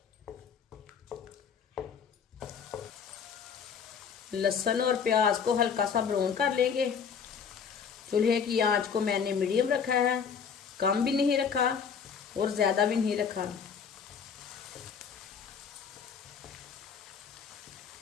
लहसुन और प्याज को हल्का सा ब्राउन कर लेंगे। चूल्हे की आंच को मैंने मीडियम रखा है, कम भी नहीं रखा और ज़्यादा भी नहीं रखा।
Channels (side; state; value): right; quieter; 6.7 dB